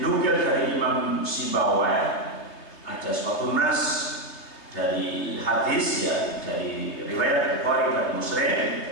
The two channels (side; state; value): right; late; 3.2 ms